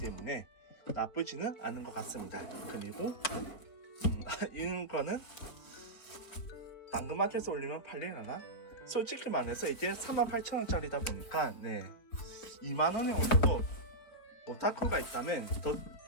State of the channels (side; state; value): right; late; 4.7 ms